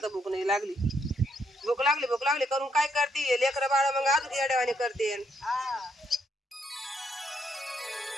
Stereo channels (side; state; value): both; normal; correlation 0.74